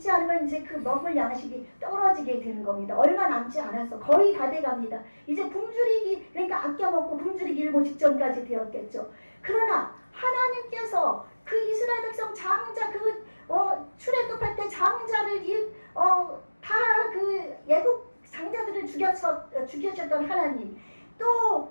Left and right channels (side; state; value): both; inverted; correlation -1.00